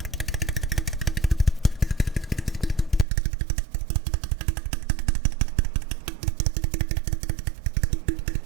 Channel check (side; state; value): left; drops out; at 3.1 s